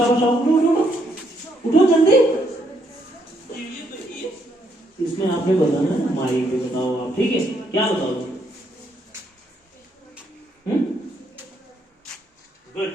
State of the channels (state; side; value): normal; both; correlation 0.74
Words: उठो जल्दी। इसमें आपने बताना है, माइक पे बताओ आप, ठीक है। क्या बताओ?